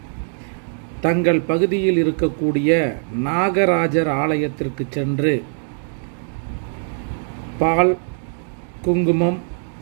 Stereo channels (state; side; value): silent; left; digital silence